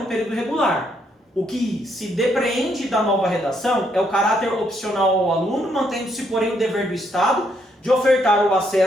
período regular. O que se depreende da nova redação é o caráter opcional ao aluno, mantendo-se, porém, o dever do Estado de ofertar o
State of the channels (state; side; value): normal; both; correlation 0.73